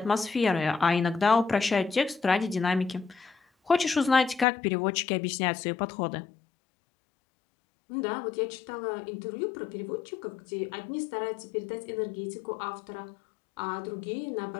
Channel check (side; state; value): right; drops out; at 4.5 s